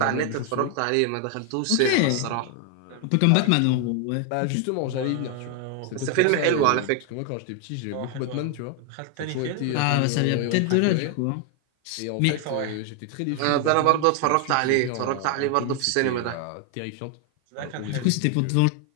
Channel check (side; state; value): both; different; correlation 0.00